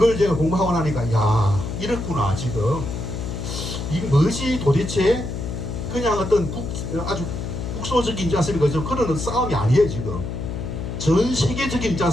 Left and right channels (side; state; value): left; noise; hum, 5 dB below the sound